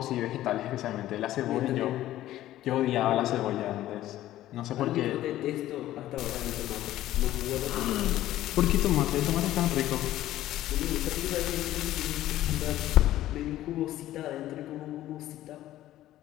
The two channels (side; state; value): right; quieter; 14.1 dB